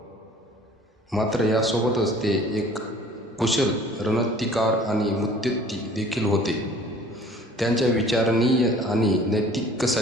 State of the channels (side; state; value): both; normal; correlation 0.50